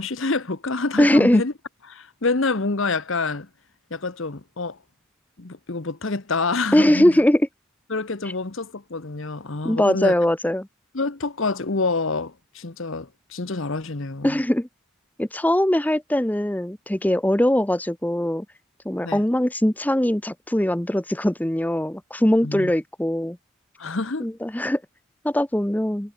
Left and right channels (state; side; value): normal; both; correlation 0.77